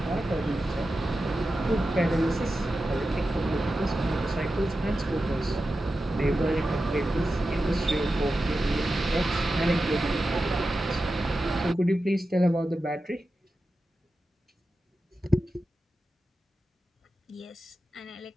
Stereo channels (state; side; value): normal; both; correlation 0.92